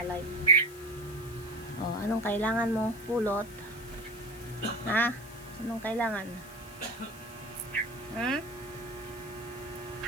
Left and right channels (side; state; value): left; noise; hiss, 19 dB below the sound